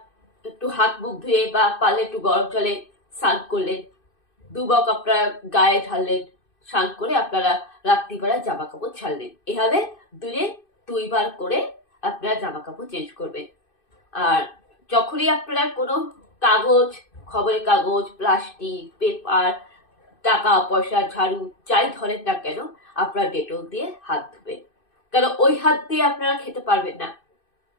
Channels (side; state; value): right; late; 2.6 ms